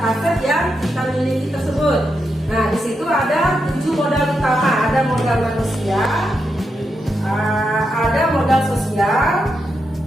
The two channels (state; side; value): normal; both; correlation 0.85